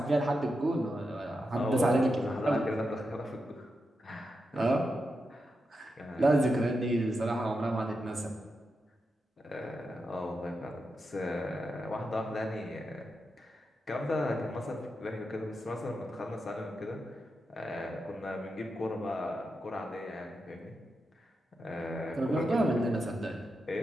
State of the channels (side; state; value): both; normal; correlation 0.87